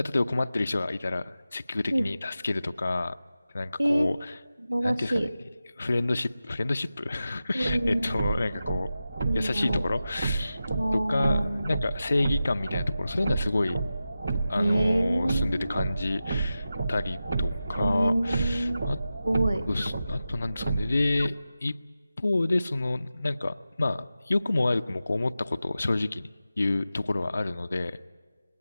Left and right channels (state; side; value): inverted; both; correlation -0.93